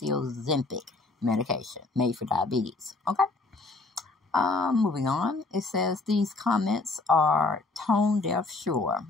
Ozempic medication made for diabetes, okay? Moving on, it says these comments are tone deaf, sure,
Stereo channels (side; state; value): right; quieter; 3.4 dB